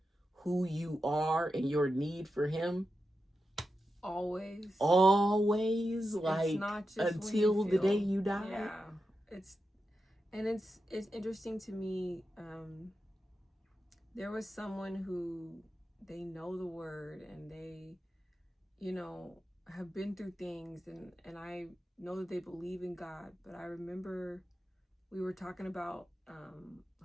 who you are and your need for him, always, like, it's not just until the day you die. Yeah, it's interesting to me. There was someone who, they know the word and they, have been through things, and I know that they believe in God. But I remember we were talking about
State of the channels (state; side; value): normal; both; correlation 0.89